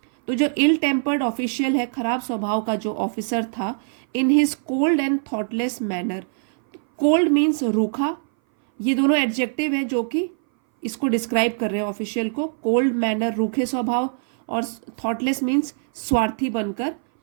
तो जो इल टेम्पर्ड ऑफिशियल है, खराब स्वभाव का जो ऑफिसर था, in his cold and thoughtless manner, cold means रूखा, ये दोनों एडजेक्टिव हैं जो कि इसको डिस्क्राइब कर रहे हैं ऑफिशियल को। कोल्ड मैनर रूखे स्वभाव, और थॉटलेस मीन्स स्वार्थी बनकर।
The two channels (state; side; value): silent; left; 58 dB below the other